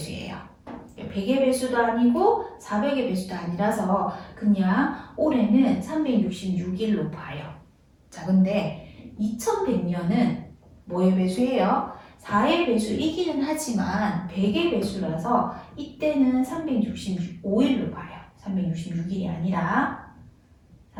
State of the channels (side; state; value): both; identical; correlation 1.00